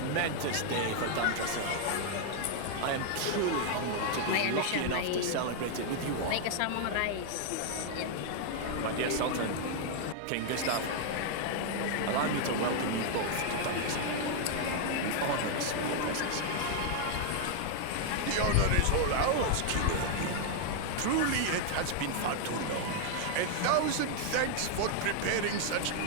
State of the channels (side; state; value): both; different; correlation 0.00